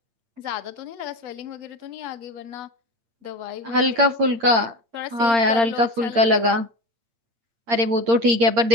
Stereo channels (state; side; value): late; left; 8.7 ms